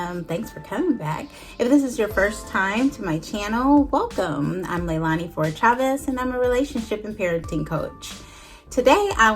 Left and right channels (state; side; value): identical; both; correlation 1.00